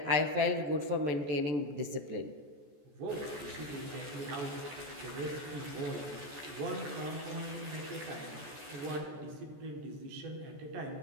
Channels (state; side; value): late; left; 14 ms